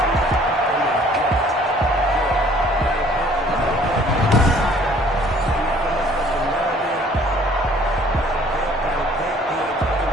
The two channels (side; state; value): both; normal; correlation 0.56